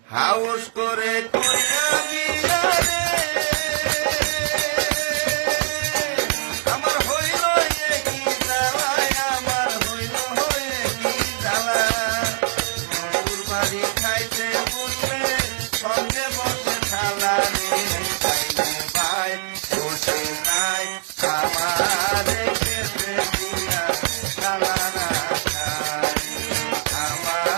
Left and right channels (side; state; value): left; silent; digital silence